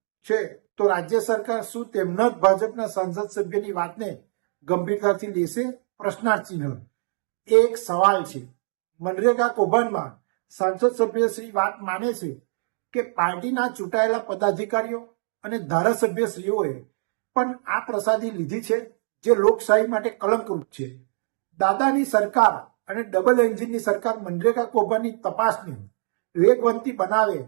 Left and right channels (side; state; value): left; silent; digital silence